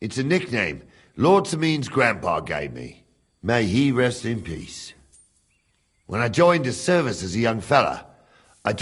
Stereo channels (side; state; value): both; identical; correlation 1.00